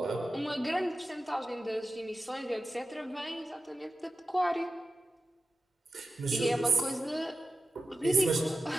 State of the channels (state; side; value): normal; both; correlation 0.93